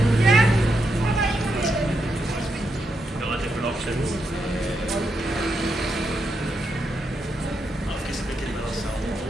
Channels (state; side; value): normal; both; correlation 0.83